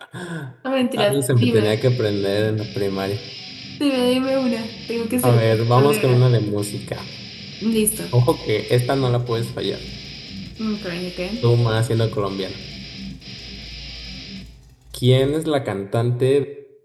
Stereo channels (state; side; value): identical; both; correlation 1.00